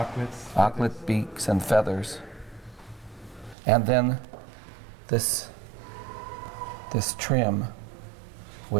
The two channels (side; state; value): left; drops out; at 3.6 s